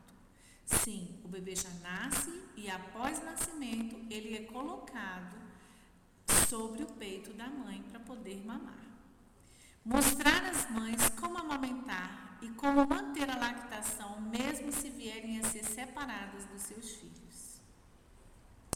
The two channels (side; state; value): both; identical; correlation 1.00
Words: Sim, o bebê já nasce e após o nascimento ele é colocado sobre o peito da mãe para poder mamar. Mostrar às mães como amamentar e como manter a lactação mesmo se vierem a ser separadas dos seus filhos.